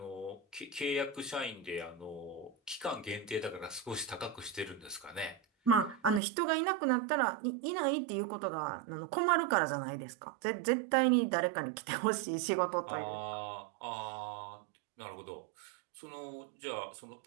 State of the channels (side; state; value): left; drops out; at 6.2 s